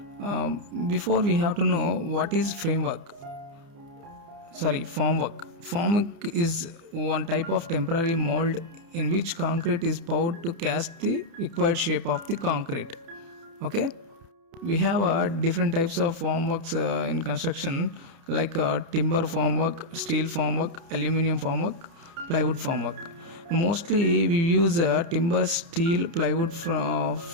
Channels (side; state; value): left; late; 30 ms